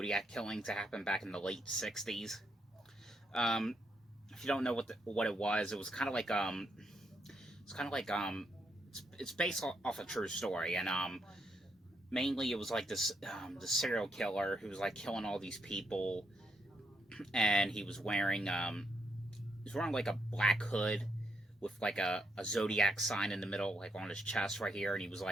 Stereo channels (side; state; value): both; normal; correlation 0.79